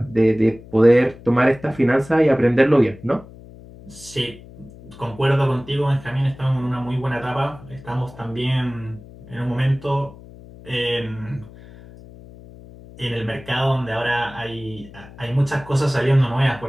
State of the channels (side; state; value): left; noise; hum, 19 dB below the sound